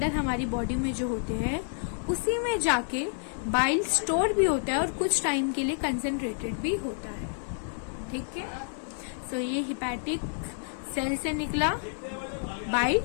हमारी बॉडी में जो होते हैं उसी में जाके बाइल स्टोर भी होता है और कुछ टाइम के लिए कंसेंट्रेटेड भी होता है। ठीक है, सो ये हिपैटिक सेल से निकला बाइल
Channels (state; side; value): silent; right; 58 dB below the other